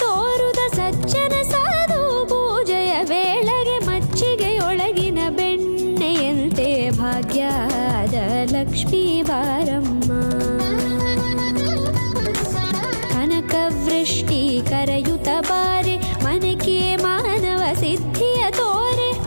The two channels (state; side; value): inverted; both; correlation -1.00